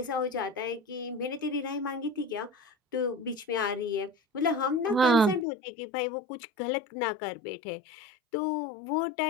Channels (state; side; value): drops out; right; at 5.5 s